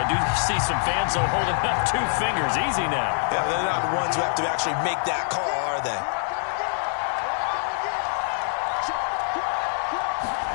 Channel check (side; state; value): right; silent; 62 dB below the other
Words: do see some fans though holding up 2 fingers. Easy now. Yeah, they're not the ones who have to actually make that call, are they?